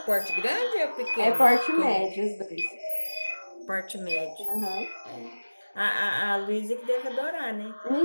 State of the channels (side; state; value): both; inverted; correlation -1.00